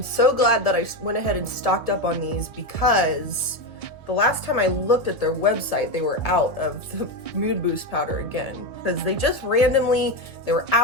so glad that I went ahead and stocked up on these because the last time I looked at their website, they were out of the Mood Boost powder again. Because they just randomly, they were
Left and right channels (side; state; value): right; late; 1.4 ms